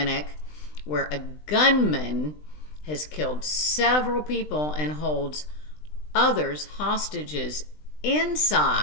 where a gunman has killed several people and holds others hostages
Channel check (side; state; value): right; late; 20 ms